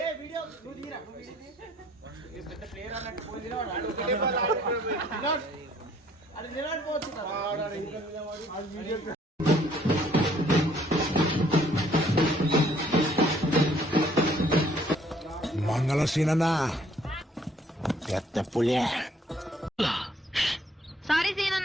మంగళ సీనన్నా పెద్ద పులే సారీ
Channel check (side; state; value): both; normal; correlation 0.62